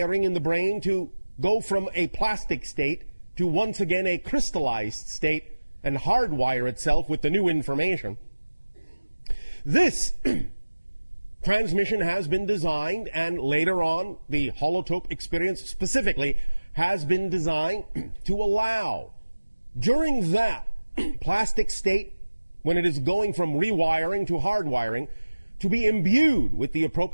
in the brain to go from a plastic state to once again a crystallized state and hardwire itself with the new information. This transmission has been designed, and later on the holotope experience specifically has been designed to allow, during that plastic state, when it is going from rewiring to hardwiring, to be imbued with the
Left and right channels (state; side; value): inverted; both; correlation -1.00